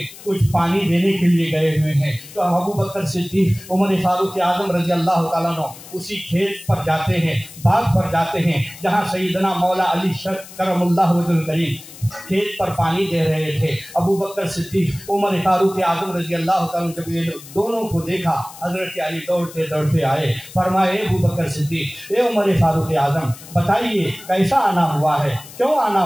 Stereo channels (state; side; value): noise; left; hiss, 17 dB below the sound